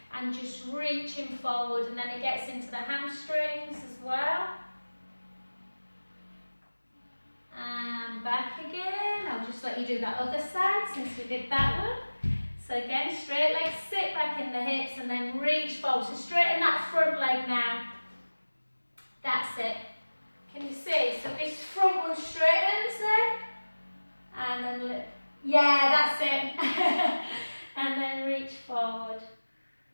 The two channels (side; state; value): both; inverted; correlation -1.00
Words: and just reaching forward, and then it gets into the hamstrings as well. And back again. I'll just let you do that other side since we did that one. So again, straight legs, sit back in the hips and then reach forward. So straighten that front leg now. That's it. Can you see? So this front one straightens then. And then, yeah, that's it. And then reach forward.